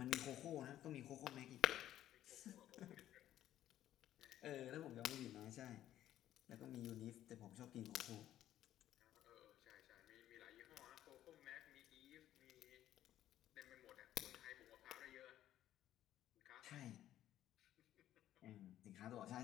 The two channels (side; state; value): right; quieter; 12.5 dB